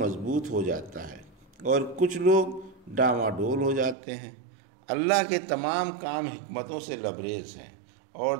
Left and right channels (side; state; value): left; drops out; at 4.0 s